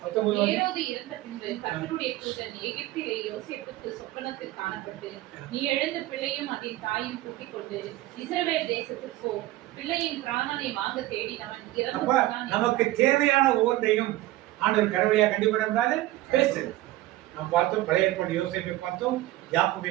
ஏரோது இறந்த பின்பு கர்த்தருடைய தூதன் எகிப்திலே யோசேப்புக்கு சொப்பனத்தில் காணப்பட்டு, நீ எழுந்த பிள்ளையும் அதன் தாயும் கூட்டிக் கொண்டு இஸ்ரவேல் தேசத்துக்கு போ. பிள்ளையின் பிராணனை வாங்க தேடினவன் இறந்து போனான். நமக்கு தேவையான ஒவ்வொன்றையும் ஆண்டவர் கடவுளையா கண்டிப்பாக பேசுறது. நாம் பார்த்தோம், பழைய ஏற்பாடு யோசேப்பை பார்த்தோம், யாக்கோபை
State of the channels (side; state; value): left; quieter; 16.5 dB